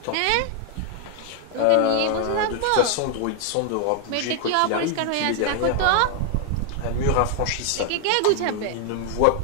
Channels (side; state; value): both; different; correlation 0.00